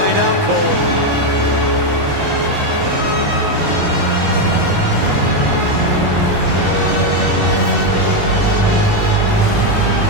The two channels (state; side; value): late; left; 21 ms